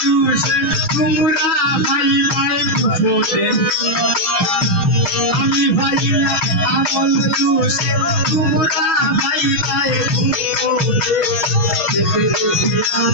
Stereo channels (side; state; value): right; late; 6.0 ms